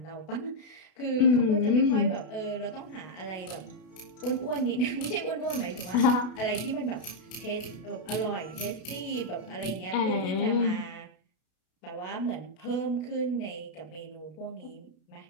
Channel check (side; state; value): right; late; 32 ms